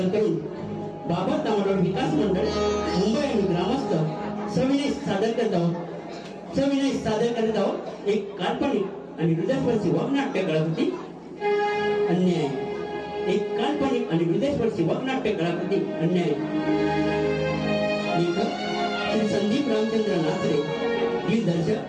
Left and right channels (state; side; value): identical; both; correlation 1.00